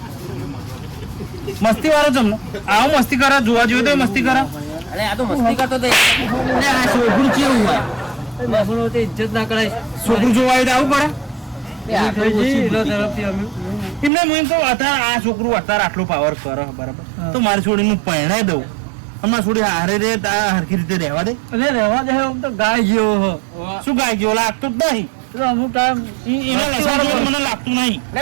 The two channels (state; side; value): drops out; left; at 14.1 s